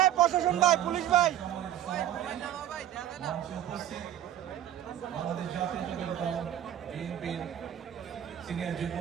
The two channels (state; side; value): quieter; left; 11.6 dB